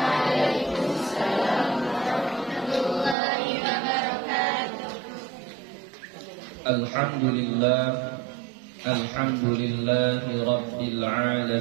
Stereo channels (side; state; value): left; drops out; at 3.2 s